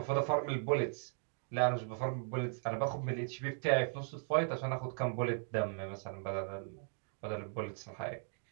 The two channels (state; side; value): silent; left; 53 dB below the other